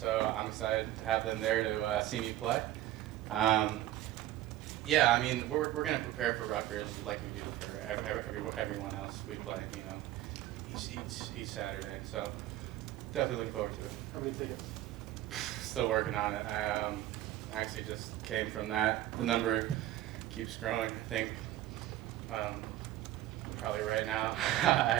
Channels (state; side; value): quieter; left; 14.2 dB